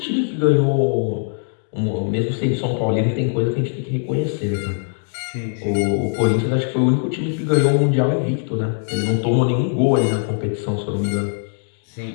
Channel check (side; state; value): right; silent; digital silence